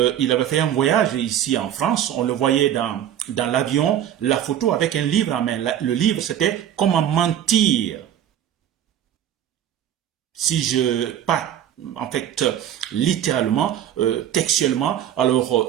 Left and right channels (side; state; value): left; quieter; 10.5 dB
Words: avait fait un voyage ici en France, on le voyait dans l'avion, la photo avec un livre en main. Le livre, c'était « Comment mentir ». Si je pas en fait, littéralement, textuellement, alors